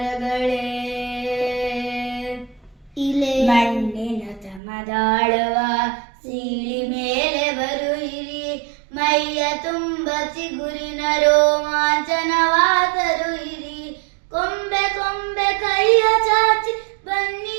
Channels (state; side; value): drops out; left; at 4.6 s